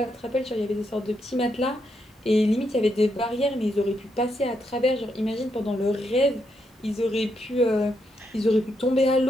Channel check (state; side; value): normal; both; correlation 0.80